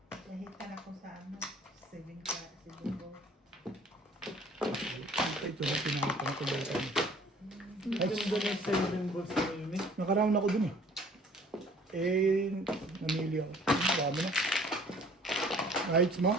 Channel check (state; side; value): normal; both; correlation 0.54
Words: Nahitan ako sa ano. 7 ko. Ito na pinakita ko dito. Ay, ganda ng 7 balls na yun eh. Nakaround ako dun eh. Namili ako. Dami na. Rights mo?